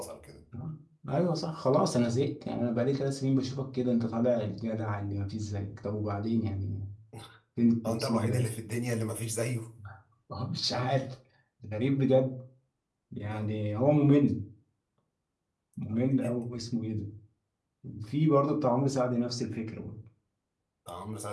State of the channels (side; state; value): both; identical; correlation 1.00